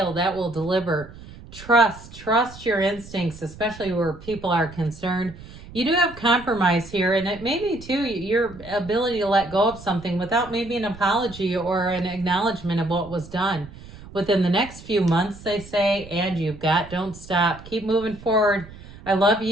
that will deliver trust. Trust your instincts, especially where people are concerned. You do have compromise here, and it may be too your ability to let go of something without maybe an apology or an acknowledgement of what was done. Within the next few months, they say, and don't stop. Keep moving forward. I love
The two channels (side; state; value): right; noise; rumble, 17 dB below the sound